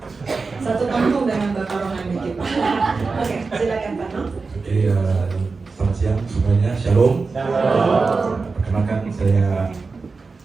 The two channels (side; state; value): left; quieter; 4.3 dB